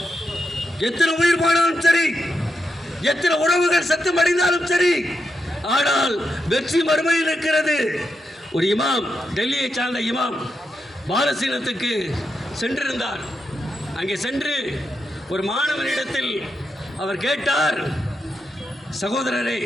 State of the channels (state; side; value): normal; both; correlation 0.85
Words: எத்தனை உயிர் போனாலும் சரி, எத்தனை உறவுகள் சத்தம் அடைந்தாலும் சரி, ஆனால் வெற்றி மறுமையில் இருக்கிறது. ஒரு இமாம், டெல்லியை சார்ந்த இமாம் பாலஸ்தீனத்துக்கு சென்றிருந்தார். அங்கே சென்று ஒரு மாணவனிடத்தில் அவர் கேட்டார், சகோதரரே,